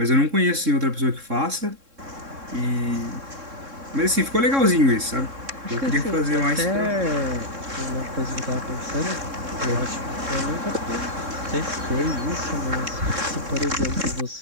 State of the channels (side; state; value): left; late; 3.7 ms